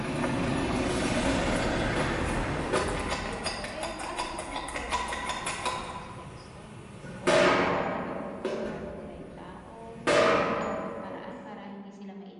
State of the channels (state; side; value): identical; both; correlation 1.00